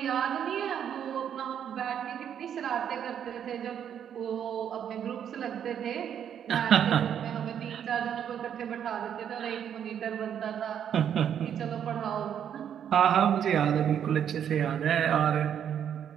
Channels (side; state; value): left; quieter; 9.0 dB